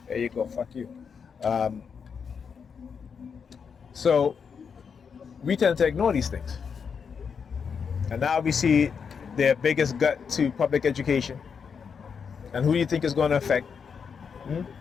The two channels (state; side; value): quieter; right; 6.3 dB